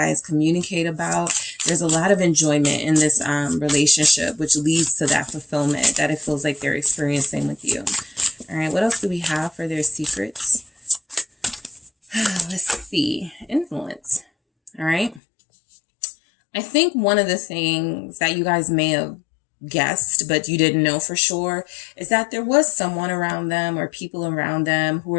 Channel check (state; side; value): drops out; right; at 15.2 s